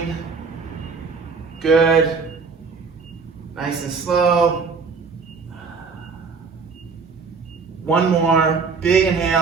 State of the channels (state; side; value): quieter; left; 5.0 dB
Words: Good. Nice and slow. 1 more. Big